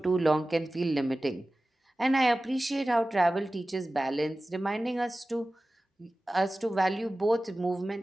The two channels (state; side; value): normal; both; correlation 0.96